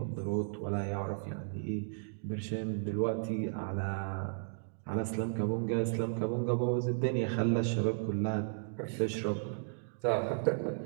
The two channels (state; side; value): silent; left; digital silence